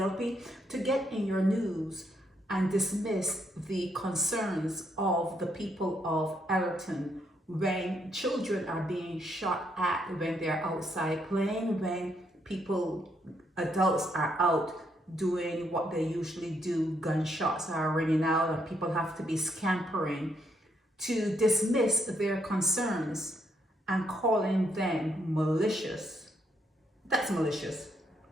to get in your news and dismiss the concerns of the people of Ellerton when children are being shot at when they're outside playing, when adults are out doing what they usually do, gunshots are ringing out and people have to be scampering, to dismiss their concerns and calling them malicious. That's malicious.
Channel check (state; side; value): normal; both; correlation 0.75